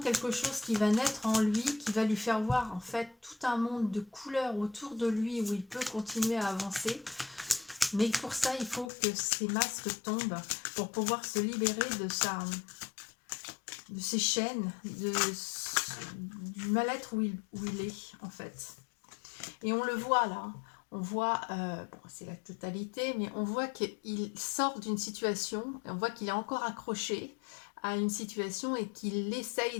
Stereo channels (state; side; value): drops out; right; at 8.9 s